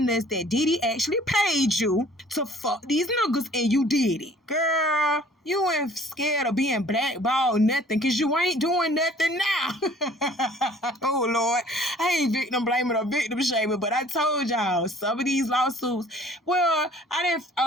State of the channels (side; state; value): both; normal; correlation 0.53